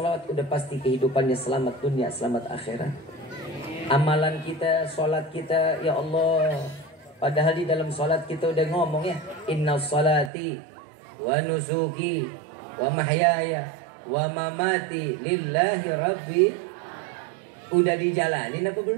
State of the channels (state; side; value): drops out; left; at 10.3 s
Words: udah pasti kehidupannya selamat dunia, selamat akhirat. Amalan kita, sholat kita, ya Allah. Padahal di dalam sholat kita udah ngomong ya, inna sholati wa nusuki wa mahyaya wa mamati lillahi rabbi. Udah dijalanin apa